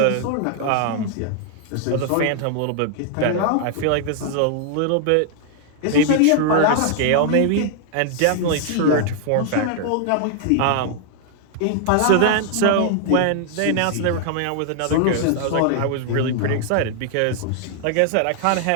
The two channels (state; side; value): different; both; correlation 0.00